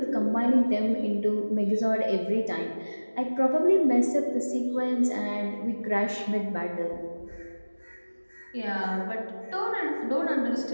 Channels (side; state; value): both; inverted; correlation -1.00